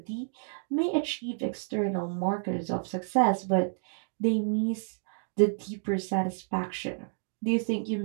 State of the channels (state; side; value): silent; left; 58 dB below the other